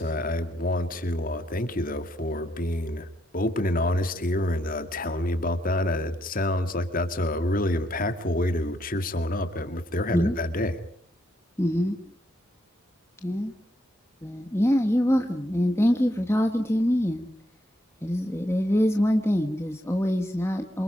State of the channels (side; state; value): both; normal; correlation 0.77